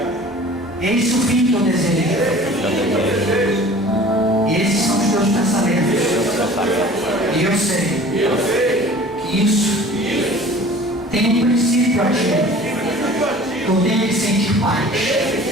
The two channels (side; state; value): both; normal; correlation 0.45